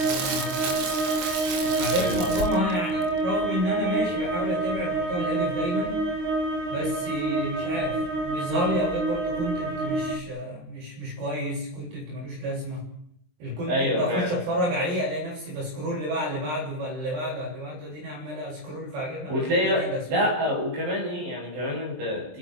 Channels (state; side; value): late; left; 23 ms